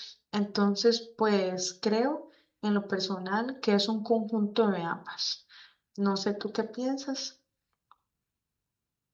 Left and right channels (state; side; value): identical; both; correlation 1.00